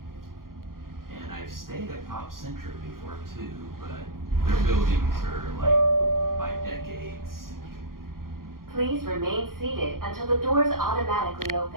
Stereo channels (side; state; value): left; late; 0.92 ms